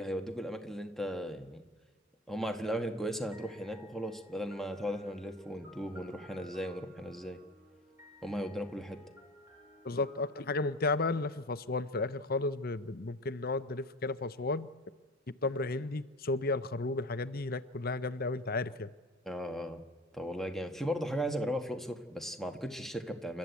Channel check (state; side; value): normal; both; correlation 0.38